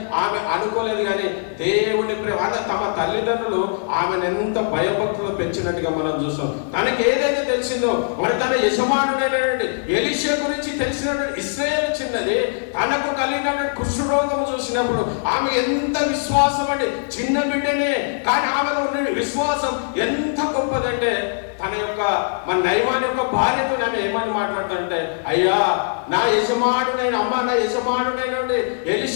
ఆమె అనుకోలేదు. కానీ దేవుని ప్రేమ తమ తల్లిదండ్రులు ఆమెను ఎంత భయభక్తులు పెంచినట్టుగా మనం చూస్తాం. తనకి ఏదైతే తెలిసిందో మరి తన యజమాను ఎలీషా గురించి తెలిసినటువంటి ఇశ్రాయేలు చిన్నది తనకు కలిగినటువంటి కుష్ఠరోగం చూసినప్పుడు ఆమె ఎంత విశ్వాసం అండి. చిన్న బిడ్డనే కానీ ఆమెలో ఉన్న విశ్వాసం ఎంత గొప్పదంటే తన యొక్క మన నయమాన్ యొక్క భార్యతో ఆమె ఏమని మాట్లాడుతుంటే అయ్యా నా యజమానుడైన అమ్మ నా యజమానుడైన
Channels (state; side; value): silent; right; digital silence